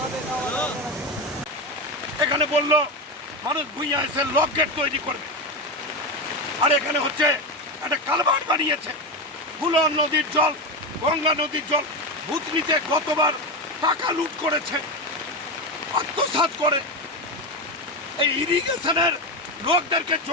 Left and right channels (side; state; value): both; normal; correlation 0.15